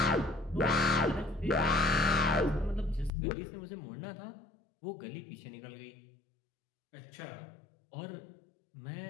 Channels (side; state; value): right; drops out; at 3.1 s